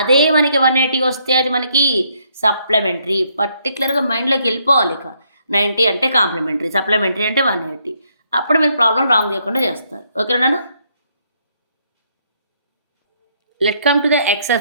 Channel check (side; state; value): both; inverted; correlation -0.72